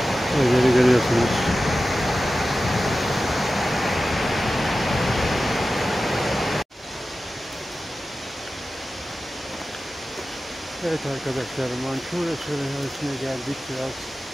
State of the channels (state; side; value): normal; both; correlation 0.94